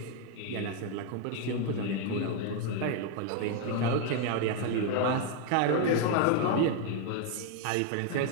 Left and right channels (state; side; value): different; both; correlation 0.01